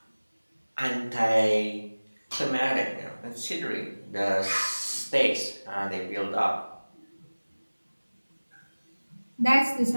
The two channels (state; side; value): inverted; both; correlation -1.00